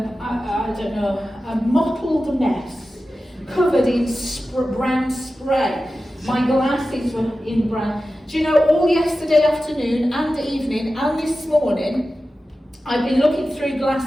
mottled mess, covered in brown spray. My glasses were in brown. Do you know, all yesterday afternoon and evening and this morning, I've been looking through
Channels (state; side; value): normal; both; correlation 0.94